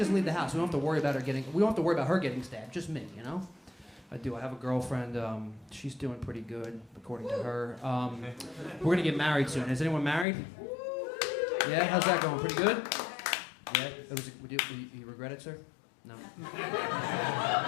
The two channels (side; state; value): right; drops out; at 10.2 s